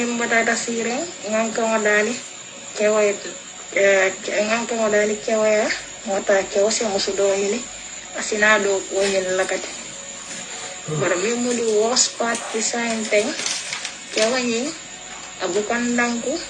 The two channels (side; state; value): both; identical; correlation 1.00